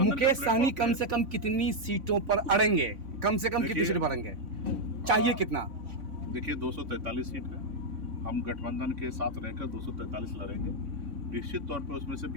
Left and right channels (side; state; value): left; late; 3.6 ms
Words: मुकेश सहनी कम से कम कितनी सीटों पर अड़ेंगे? कम से कम कितनी सीट पर अड़ेंगे? चाहिए कितना? देखिए 243 सीट है, हम गठबंधन के साथ रहकर 243 लड़ेंगे। निश्चित तौर पे उसमें से